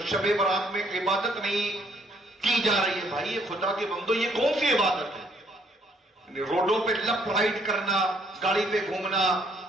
شب برات میں عبادت نہیں کی جا رہی ہے. بھائی یہ خدا کے بندو, یہ کون سی عبادت ہے؟ روڈوں پہ لیفٹ رائٹ کرنا, گاڑی پہ گھومنا,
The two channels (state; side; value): normal; both; correlation 0.67